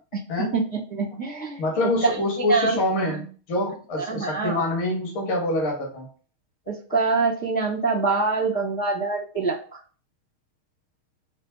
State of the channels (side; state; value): right; late; 6.4 ms